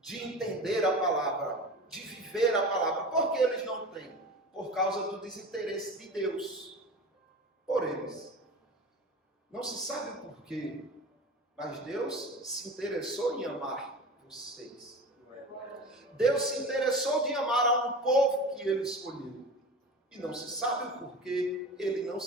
entender a palavra, de viver a palavra. Por que eles não têm? Por causa do desinteresse de Deus por eles. Não se sabe o porquê, mas Deus se interessou em amar vocês. Deus se interessou de amar a um povo que Ele escolheu. E não se sabe o porquê Ele não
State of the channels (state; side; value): normal; both; correlation 0.33